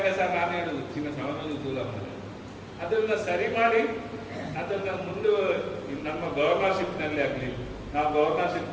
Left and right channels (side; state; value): both; identical; correlation 1.00